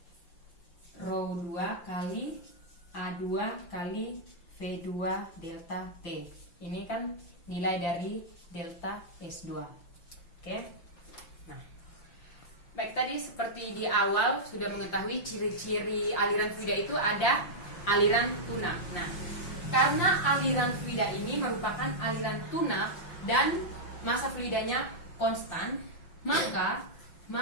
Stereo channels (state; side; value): late; right; 5.8 ms